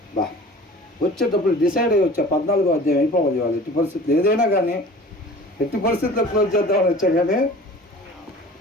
బా వచ్చేటప్పుడు డిసైడ్ అయ్యి వచ్చా 14వ అధ్యాయం అయిపోవాలి. వాళ్ళు ఎట్టి పరిస్థితులు ఏదైనా కానీ ఎట్టి పరిస్థితుల్లో క్లోజ్ చేద్దామని వచ్చా, కానీ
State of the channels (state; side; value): normal; both; correlation 0.43